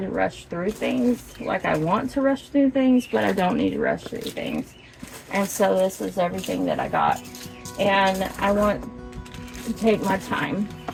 rush through things. Like, I want to rush through things, but I don't need to rush through things. And so this is everything that I got, and I want to take my time.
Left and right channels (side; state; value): both; identical; correlation 1.00